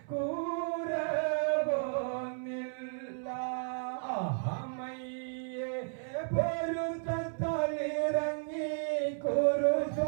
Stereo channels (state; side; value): silent; left; 55 dB below the other